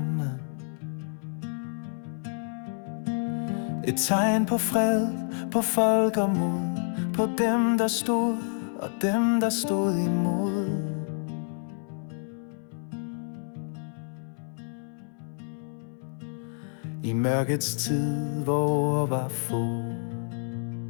Et tegn på fred, på folk og mod, på dem, der stod og dem, der stod imod. I mørkets tid, hvor var få,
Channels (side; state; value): right; silent; digital silence